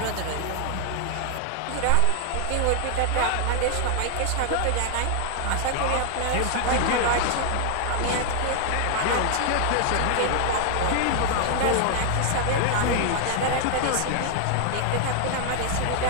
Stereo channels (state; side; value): different; both; correlation 0.00